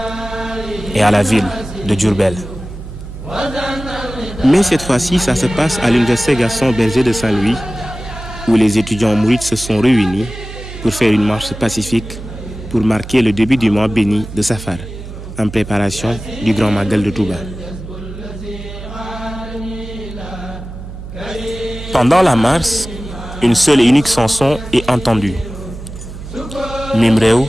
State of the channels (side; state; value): right; noise; hum, 11 dB below the sound